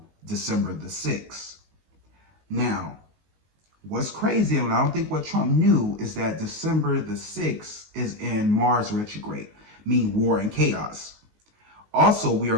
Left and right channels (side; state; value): left; late; 19 ms